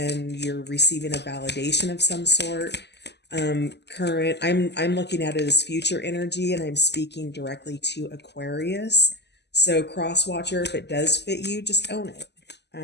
you're receiving a validation of some sort. Current, I'm looking at it as future energy, and I'm speaking directly to Aquarius. So cross watcher, if it does fit you, just own it.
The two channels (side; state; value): right; late; 0.50 ms